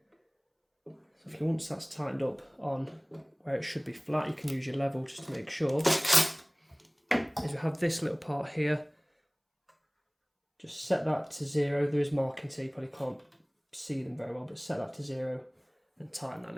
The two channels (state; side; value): identical; both; correlation 1.00